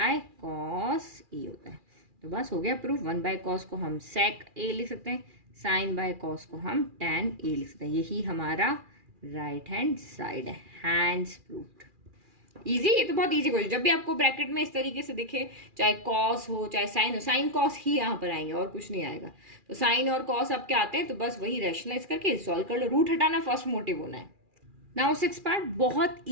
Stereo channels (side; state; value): left; late; 2.4 ms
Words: cos A होता है। तो बस हो गया प्रूफ। 1 बाय कॉस को हम सेक ए लिख सकते हैं, साइन बाय कॉस को हम tan ए लिख सकते हैं। यही हमारा राइट हैंड साइड है, हैंड्स प्रूव्ड। इजी, ये तो बहुत इजी क्वेश्चन। जब भी आपको ब्रैकेट में इस तरीके से दिखे, चाहे कॉस हो चाहे साइन हो, साइन कॉस ही यहाँ पर आएंगे और कुछ नहीं आएगा। तो साइन और कॉस आपके आते हैं, तो बस वही रैशनलाइज करके सॉल्व कर लो। रूट हटाना फर्स्ट मोटिव होना है। नाउ 6 पार्ट, बहुत